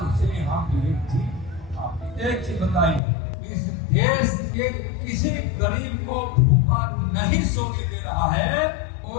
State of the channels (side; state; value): right; drops out; at 3.0 s